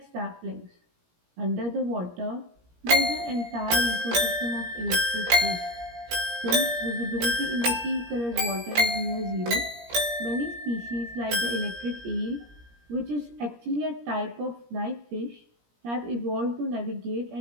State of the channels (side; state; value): left; late; 17 ms